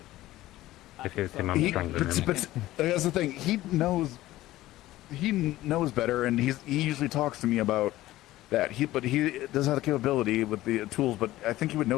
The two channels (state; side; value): quieter; right; 16.1 dB